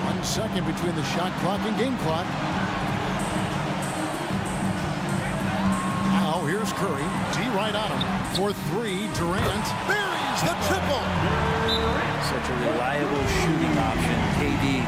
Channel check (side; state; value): both; identical; correlation 1.00